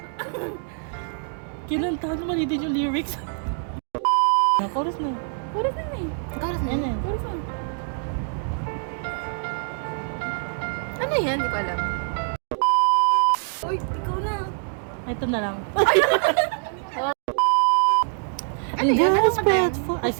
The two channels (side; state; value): left; silent; 62 dB below the other